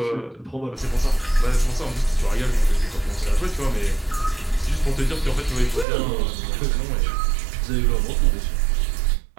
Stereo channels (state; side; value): drops out; left; at 5.9 s